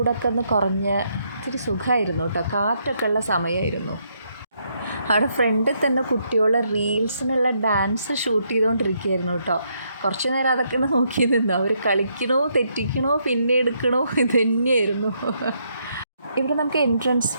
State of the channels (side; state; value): both; inverted; correlation -0.75